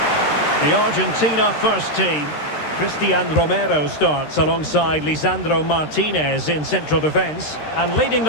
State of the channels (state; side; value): late; right; 13 ms